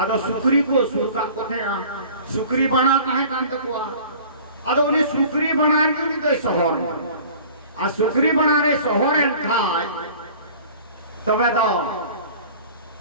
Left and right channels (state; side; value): inverted; both; correlation -0.45